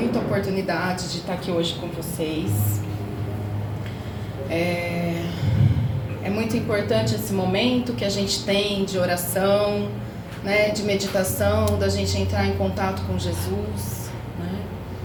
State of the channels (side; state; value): both; identical; correlation 1.00